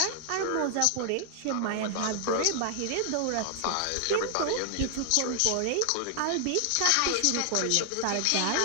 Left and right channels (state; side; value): different; both; correlation 0.00